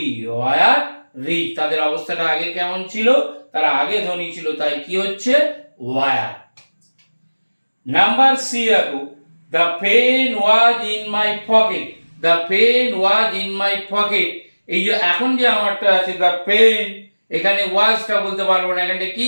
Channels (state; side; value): inverted; both; correlation -1.00